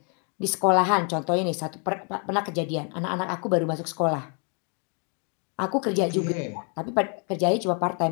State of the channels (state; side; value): quieter; right; 38.7 dB